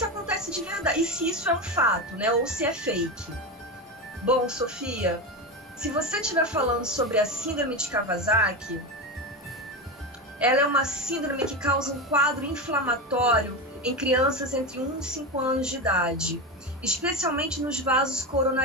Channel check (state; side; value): normal; both; correlation 0.18